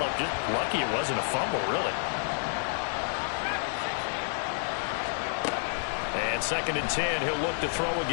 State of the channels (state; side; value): silent; right; digital silence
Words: Just lucky it wasn't a fumble, really. And 2nd and 10, he'll look to throw